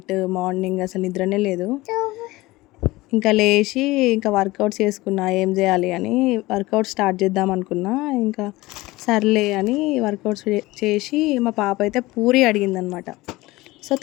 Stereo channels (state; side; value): quieter; right; 19.8 dB